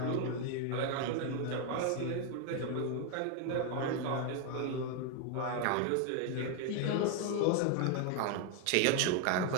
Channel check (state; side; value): different; both; correlation 0.01